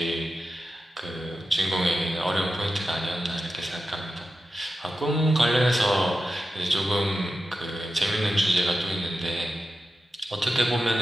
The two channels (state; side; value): normal; both; correlation 0.91